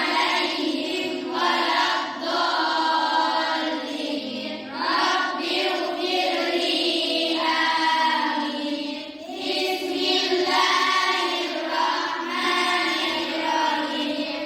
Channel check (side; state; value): both; identical; correlation 1.00